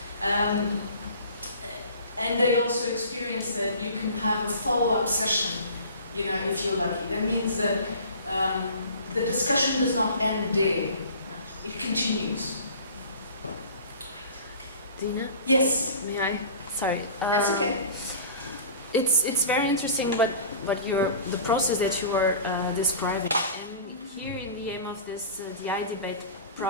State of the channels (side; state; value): both; inverted; correlation -0.42